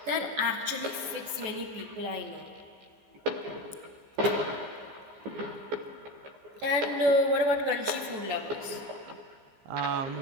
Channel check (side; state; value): left; late; 14 ms